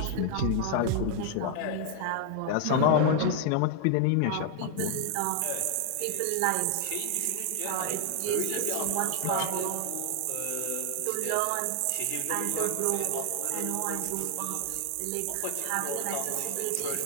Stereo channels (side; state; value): both; different; correlation 0.00